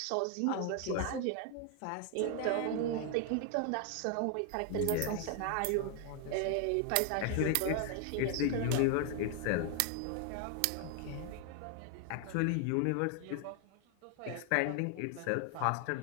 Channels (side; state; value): both; different; correlation 0.00